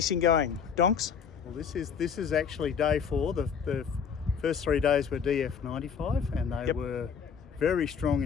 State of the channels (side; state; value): right; quieter; 6.8 dB